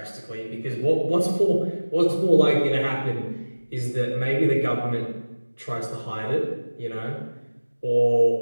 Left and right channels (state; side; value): inverted; both; correlation -1.00